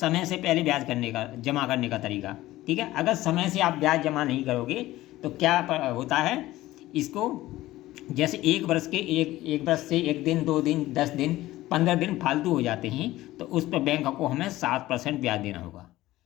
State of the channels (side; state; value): right; quieter; 16.5 dB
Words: से पहले ब्याज करने का, जमा करने का तरीका। ठीक है, अगर समय से आप ब्याज जमा नहीं करोगे तो क्या होता है? इसको जैसे 1 वर्ष से 1 दिन, 2 दिन, 10 दिन, 15 दिन फालतू हो जाते हैं, तो उस पर बैंक को हमें 7% ब्याज देना होगा।